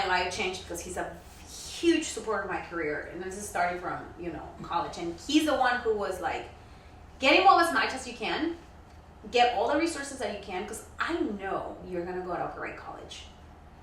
life changed because he's a huge supporter of my career, and this is starting from college, and he's the one who was like, get involved as much as you can, get all the resources that you can, because I know you're gonna go to a great college,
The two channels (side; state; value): both; identical; correlation 1.00